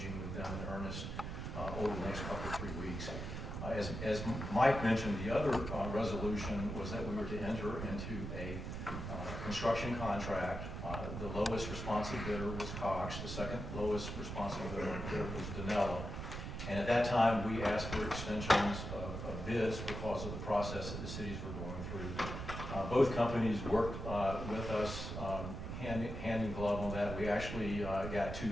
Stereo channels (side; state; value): right; noise; rumble, 6 dB below the sound